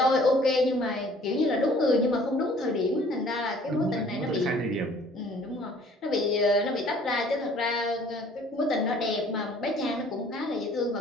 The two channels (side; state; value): both; normal; correlation 0.55